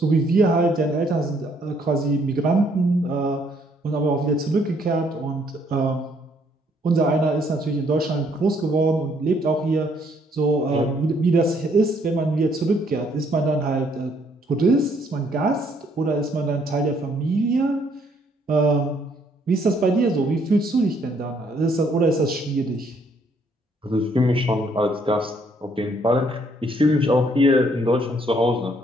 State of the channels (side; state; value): both; normal; correlation 0.67